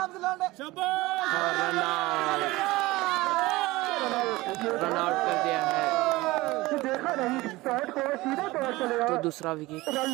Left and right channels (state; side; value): quieter; left; 20.0 dB